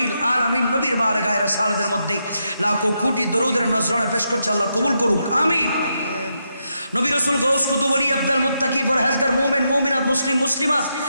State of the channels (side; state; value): both; inverted; correlation -0.82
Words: আলামিন নবীর বারগায়ে রাসালাতের মধ্যে লাখো কোটি দরুদের নজরানা পেশ করছে। আল্লাহ কবুল করুক, আমিন। নবী রাসূল গাউস কুতুব ওলি আব্দুল মুত্তাকি ফরহেজগার মুমিন মুমিনাত মুসলিম মুসলিমাত